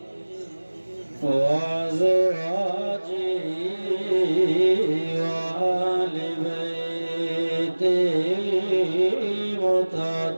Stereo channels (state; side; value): inverted; both; correlation -1.00